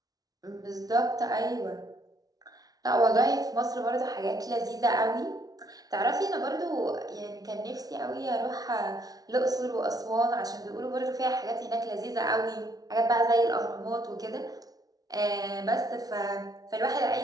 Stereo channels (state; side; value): late; left; 0.18 ms